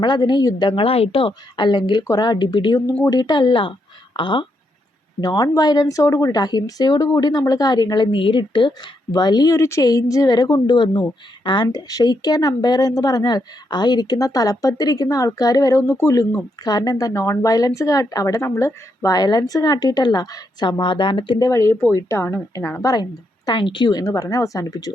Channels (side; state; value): both; normal; correlation 0.80